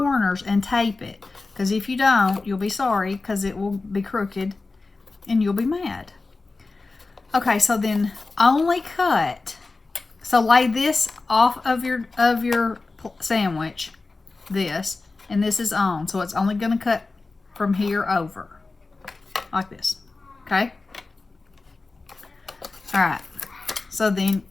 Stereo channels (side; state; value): right; quieter; 3.7 dB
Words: and tape it, because if you don't, you'll be sorry, because it will be crooked and you'll be mad. Okay, so then only cut. So lay this off of your sandwich, this, and this is on. So it's only going to cut from here over, like this. Okay? All right. So then